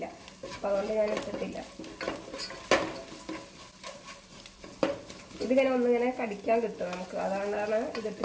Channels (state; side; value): identical; both; correlation 1.00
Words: അപ്പം അതുകൊണ്ട് ഞാൻ ഇട്ടിട്ടില്ല. ഇതിങ്ങനെ ഒന്നിങ്ങനെ കടിക്കാൻ കിട്ടും നമുക്ക്, അതുകൊണ്ടാണ്